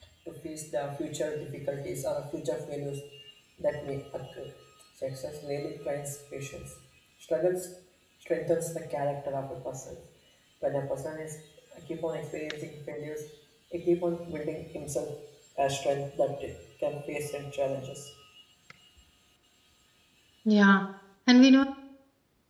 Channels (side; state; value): both; identical; correlation 1.00